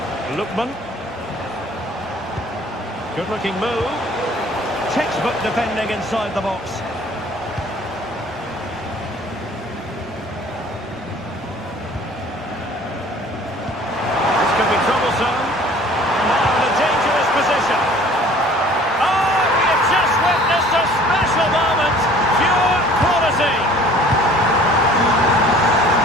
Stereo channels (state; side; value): normal; both; correlation 0.51